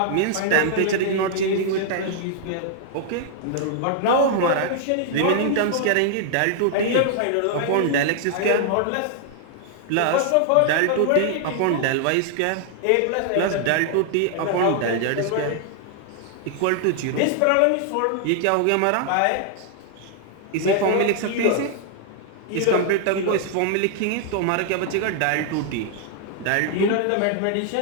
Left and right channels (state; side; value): different; both; correlation 0.00